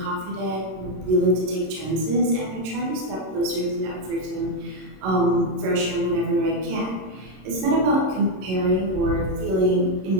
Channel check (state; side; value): late; left; 26 ms